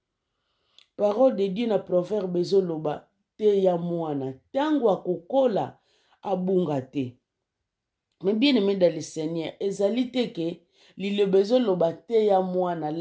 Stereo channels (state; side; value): identical; both; correlation 1.00